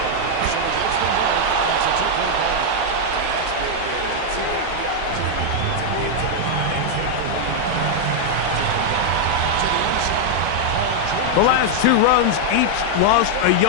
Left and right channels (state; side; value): different; both; correlation -0.01